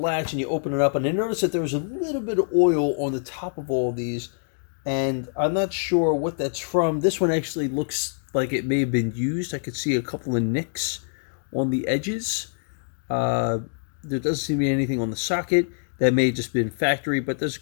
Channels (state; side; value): silent; right; digital silence